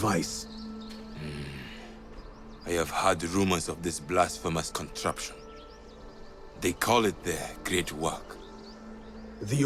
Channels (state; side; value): identical; both; correlation 1.00